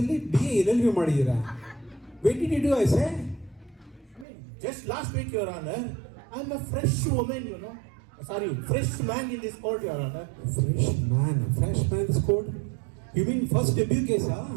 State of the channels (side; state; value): left; drops out; at 4.2 s